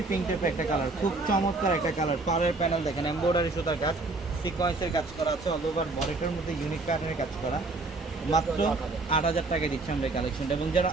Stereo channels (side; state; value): left; quieter; 3.3 dB